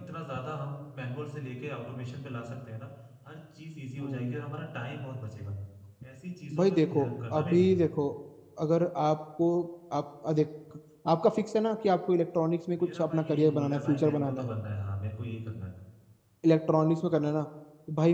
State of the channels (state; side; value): identical; both; correlation 1.00